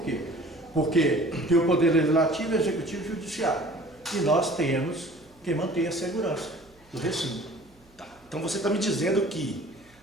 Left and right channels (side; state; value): right; noise; hum, 30 dB below the sound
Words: quê? Porque tem o poder legislativo, executivo e judiciário. E nós temos que manter a segurança do recinto. Tá. Então você está me dizendo que